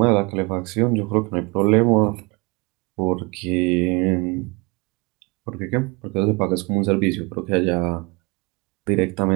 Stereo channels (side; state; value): left; quieter; 27.5 dB